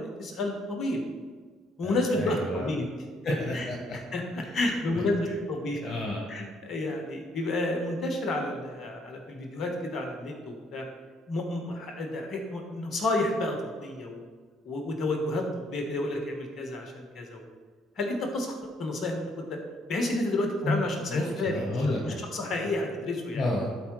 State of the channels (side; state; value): both; normal; correlation 0.69